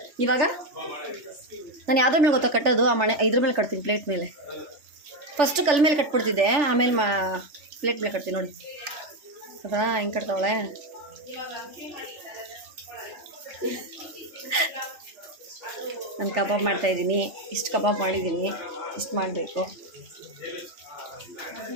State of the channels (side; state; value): left; late; 3.4 ms